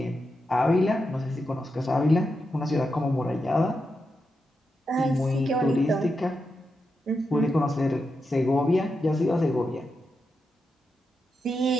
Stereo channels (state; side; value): normal; both; correlation 0.87